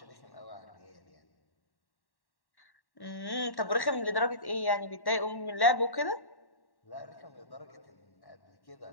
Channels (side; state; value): right; late; 1.1 ms